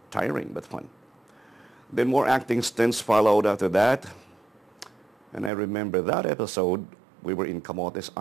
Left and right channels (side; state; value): left; drops out; at 5.5 s